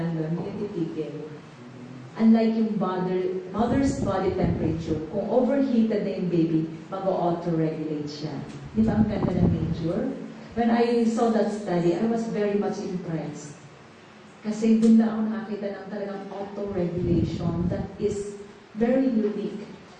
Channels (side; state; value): both; identical; correlation 1.00